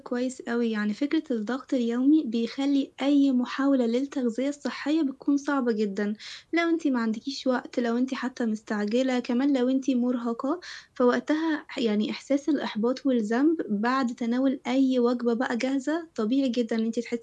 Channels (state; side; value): identical; both; correlation 1.00